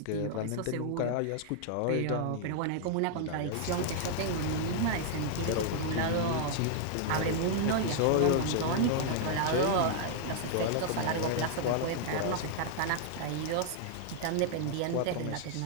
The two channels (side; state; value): both; different; correlation 0.00